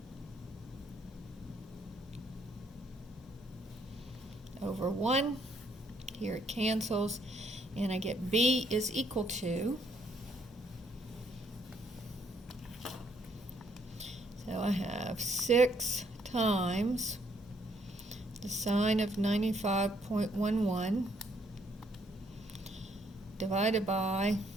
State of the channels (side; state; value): both; normal; correlation 0.69